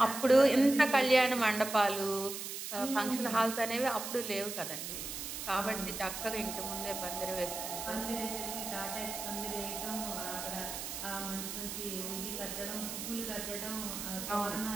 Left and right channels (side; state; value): right; noise; hiss, 6 dB below the sound